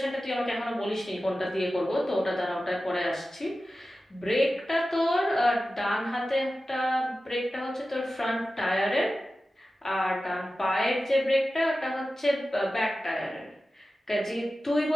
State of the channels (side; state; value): both; normal; correlation 0.94